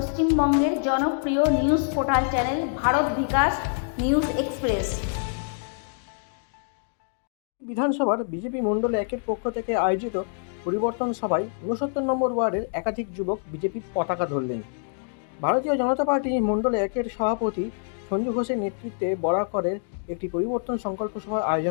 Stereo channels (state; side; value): silent; right; digital silence